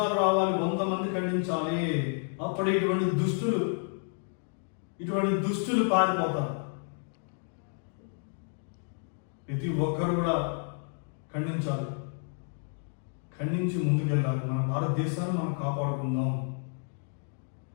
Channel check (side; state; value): right; silent; 57 dB below the other